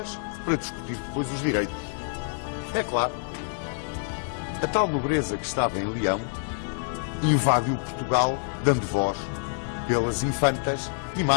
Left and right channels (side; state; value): right; silent; 60 dB below the other